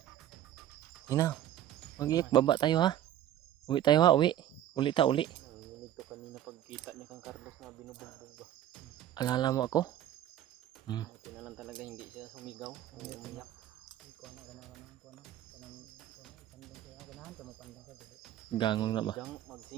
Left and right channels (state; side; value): quieter; left; 11.7 dB